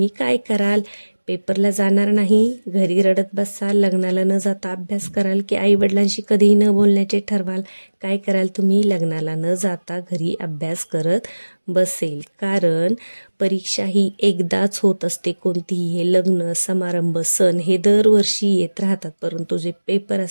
काय कराल? पेपरला जाणार नाही, घरी रडत बसाल, लग्नाला न जाता अभ्यास कराल, की आई वडिलांशी कधीही न बोलण्याचे ठरवाल? काय कराल तुम्ही? लग्नाला न जाता घरी अभ्यास करत बसेल. कारण परीक्षा ही एकदाच होत असते. कोणतीही, हे लग्न समारंभ सण हे दरवर्षी येत राहतात, परंतु जे पेपर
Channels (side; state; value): both; inverted; correlation -1.00